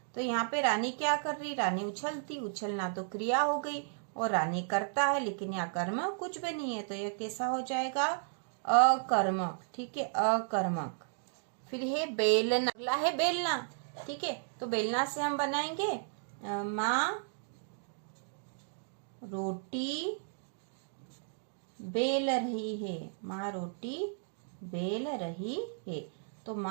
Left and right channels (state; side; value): silent; left; digital silence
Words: तो यहाँ पे रानी क्या कर रही, रानी उछलती, उछलना तो क्रिया हो गई और रानी करता है, लेकिन यहाँ कर्म कुछ भी नहीं है, तो यह कैसा हो जाएगा, अकर्मक। ठीक है, अकर्मक। फिर है बेलना, अगला है बेलना। ठीक है, तो बेलना से हम बनाएंगे माँ रोटी बेल रही है, माँ रोटी बेल रही है। तो